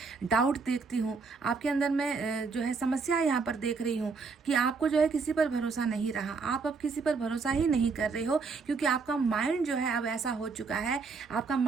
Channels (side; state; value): left; quieter; 4.7 dB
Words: डाउट देखती हूँ आपके अंदर, मैं जो है समस्या यहाँ पर देख रही हूँ कि आपको जो है किसी पर भरोसा नहीं रहा, आप अब किसी पर भरोसा ही नहीं कर रहे हो, क्योंकि आपका माइंड जो है अब ऐसा हो चुका है, आपका